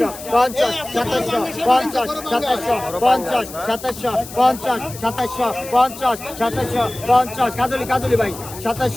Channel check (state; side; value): noise; left; hiss, 14 dB below the sound